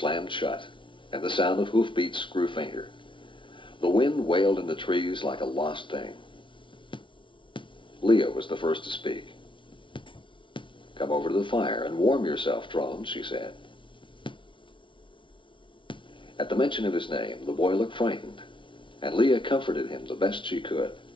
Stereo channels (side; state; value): right; late; 0.24 ms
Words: shut, and the sound of hoofbeats grew fainter. The wind wailed in the trees like a lost thing. Leah was the first to speak. "Come over to the fire and warm yourself, Trone," she said. At the mention of his name, the boy looked frightened, and Leah comforted him the best she could.